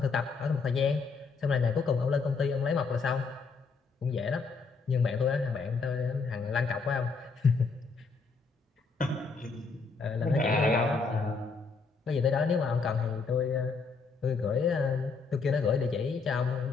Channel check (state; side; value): quieter; right; 4.7 dB